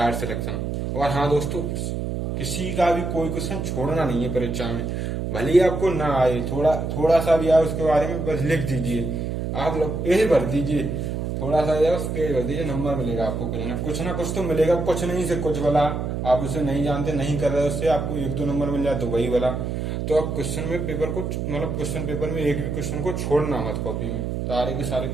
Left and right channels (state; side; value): noise; right; hum, 3 dB below the sound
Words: सिलेक्शन। और हाँ दोस्तों, किसी का भी कोई क्वेश्चन छोड़ना नहीं है परीक्षा में, भले ही आपको ना आए, थोड़ा सा भी आए उसके बारे में बस लिख दीजिए, आप लोग पेज भर दीजिए, थोड़ा सा आए उस पेज भर दीजिए, नंबर मिलेगा आपको, कुछ ना कुछ तो मिलेगा, कुछ नहीं से कुछ वाला, आप उसे नहीं जानते, नहीं कर रहे, उससे आपको 1-2 नंबर मिल जाए तो वही वाला। तो आप क्वेश्चन में पेपर को, मतलब क्वेश्चन पेपर में एक भी क्वेश्चन को छोड़ना मत, कॉपी में सारे के सारे